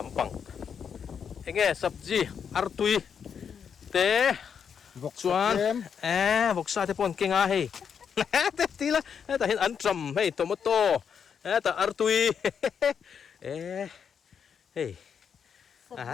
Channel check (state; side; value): quieter; right; 7.2 dB